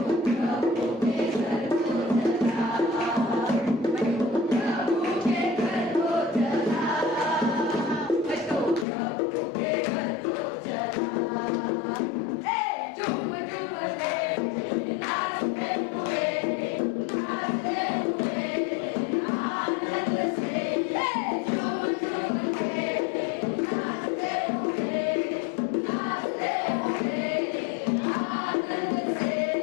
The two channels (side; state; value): right; drops out; at 8.8 s